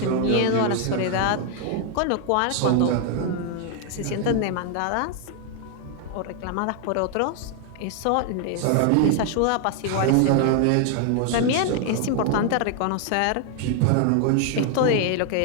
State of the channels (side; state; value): both; different; correlation 0.00